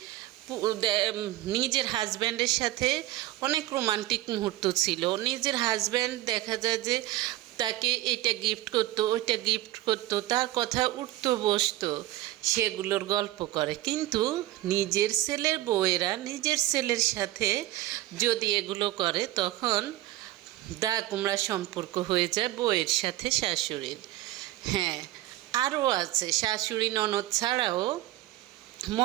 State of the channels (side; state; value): left; quieter; 16.1 dB